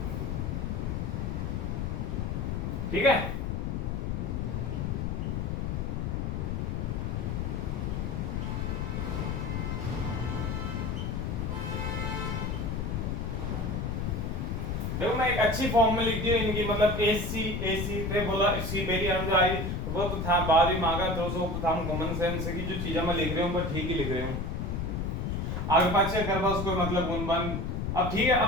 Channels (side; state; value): left; noise; rumble, 1 dB below the sound